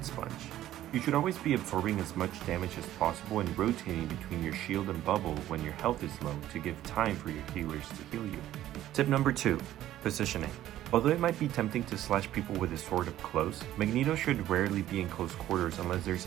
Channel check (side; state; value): left; quieter; 13.3 dB